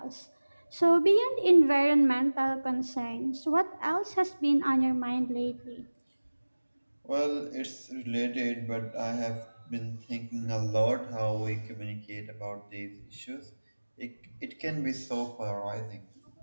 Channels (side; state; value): both; inverted; correlation -1.00